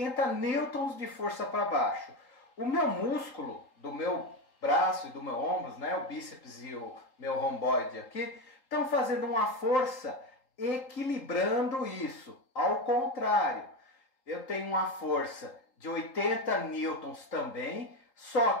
newtons de força para baixo. O meu músculo do meu braço e do meu ombro, né, o bíceps e o meu romboide aqui, estão fazendo uma força equilibrando isso. Ao contrário, eu tenho uma força de 80 newtons também, só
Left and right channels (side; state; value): right; late; 3.8 ms